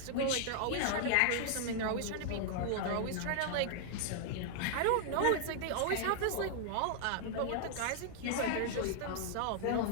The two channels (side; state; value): both; different; correlation -0.01